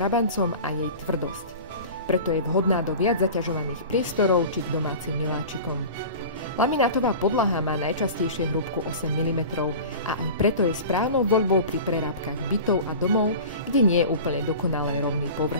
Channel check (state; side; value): inverted; both; correlation -0.36